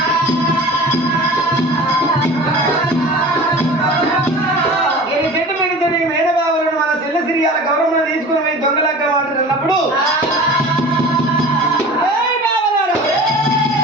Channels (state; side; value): normal; both; correlation 0.39